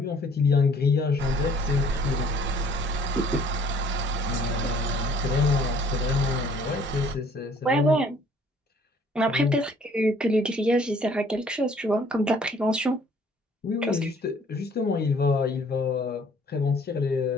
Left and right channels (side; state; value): both; normal; correlation 0.58